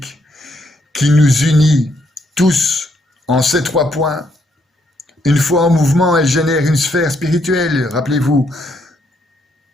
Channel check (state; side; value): normal; both; correlation 0.74